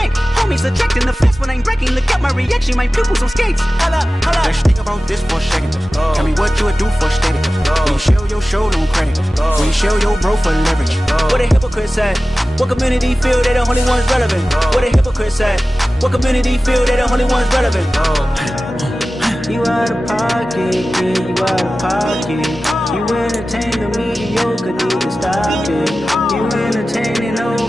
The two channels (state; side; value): normal; both; correlation 0.96